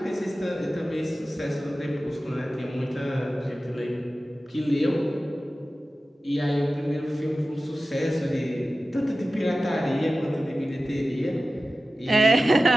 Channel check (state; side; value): normal; both; correlation 0.95